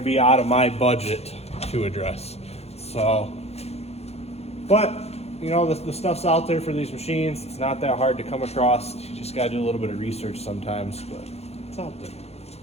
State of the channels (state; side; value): late; right; 0.30 ms